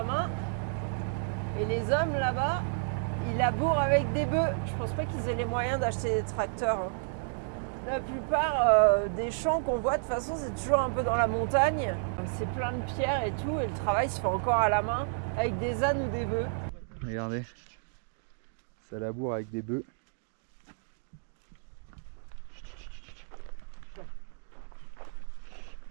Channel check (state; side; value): silent; left; digital silence